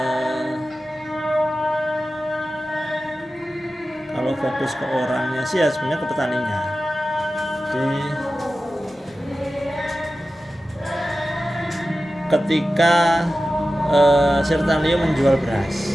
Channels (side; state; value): both; normal; correlation 0.94